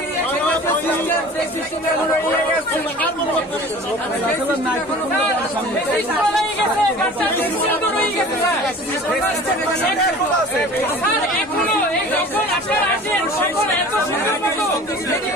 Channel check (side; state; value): both; normal; correlation 0.42